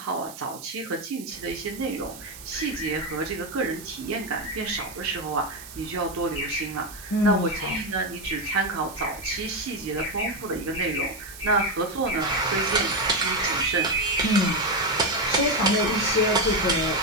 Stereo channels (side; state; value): right; noise; hiss, 15 dB below the sound